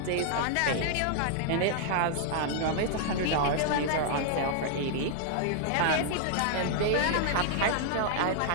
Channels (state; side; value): different; both; correlation -0.01